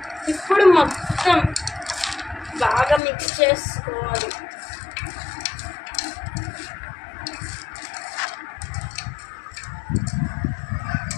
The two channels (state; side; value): drops out; right; at 3.0 s